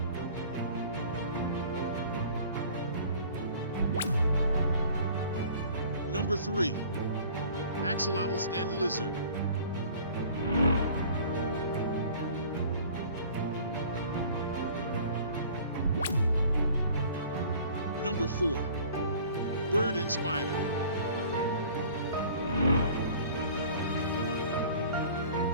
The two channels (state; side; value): inverted; both; correlation -0.48